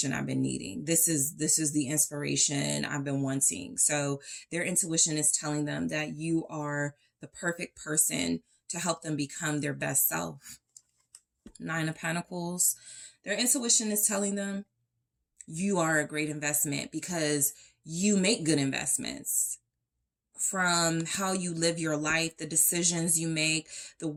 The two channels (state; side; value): identical; both; correlation 1.00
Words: I've been needing. This is the inspiration I've been wanting. So their intuition is telling them that you are the perfect person to help them become their best self. 9 of Pentacles. Their intuition is telling them you are a great investment because you make good investments. From how you live your life, the decisions you make, the